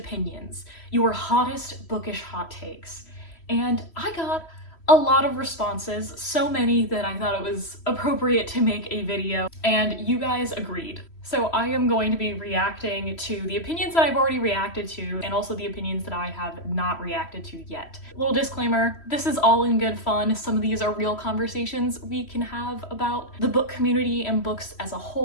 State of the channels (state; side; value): late; right; 3.1 ms